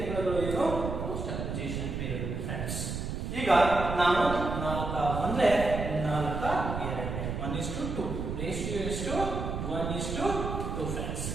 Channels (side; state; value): right; noise; rumble, 4 dB below the sound